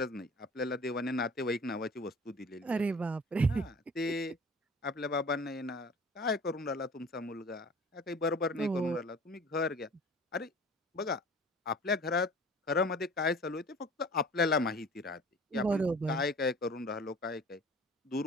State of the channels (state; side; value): normal; both; correlation 0.44